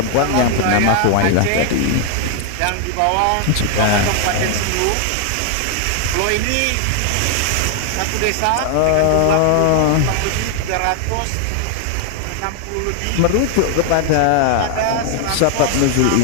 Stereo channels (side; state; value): both; different; correlation 0.00